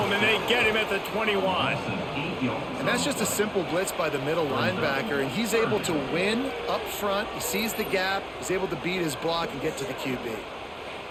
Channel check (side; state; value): both; identical; correlation 1.00